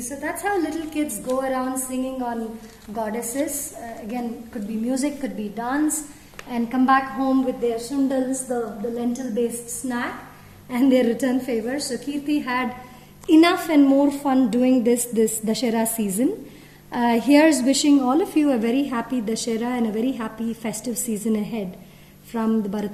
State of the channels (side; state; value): both; identical; correlation 1.00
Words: So that's how little kids go around singing on goddesses. Again, could be music, could be dance, and come back home with their sundals, the lentil-based snack, and their return favors. So Kirti had enough and more fun doing this Dashera season. Here's wishing all of you a very happy Dashera and a very happy festive season ahead from the